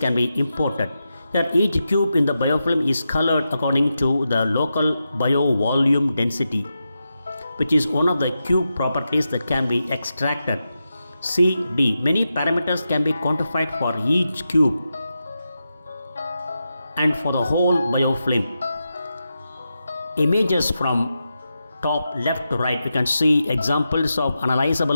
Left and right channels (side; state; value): both; inverted; correlation -0.89